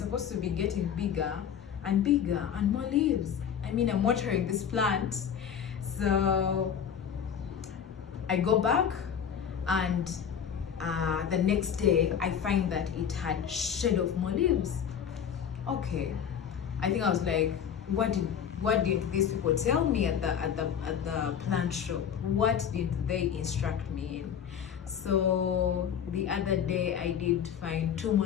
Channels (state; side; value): quieter; right; 8.2 dB